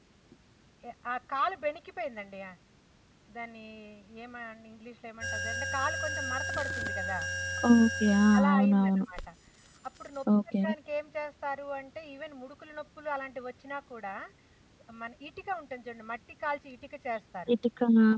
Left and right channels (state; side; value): identical; both; correlation 1.00